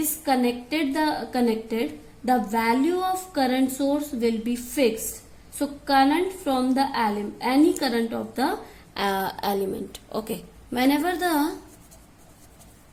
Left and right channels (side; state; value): both; identical; correlation 1.00